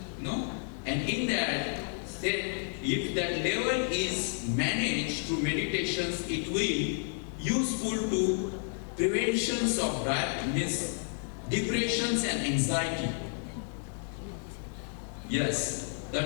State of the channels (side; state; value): right; silent; 56 dB below the other